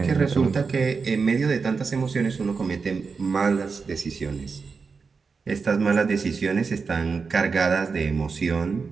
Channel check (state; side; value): quieter; left; 5.0 dB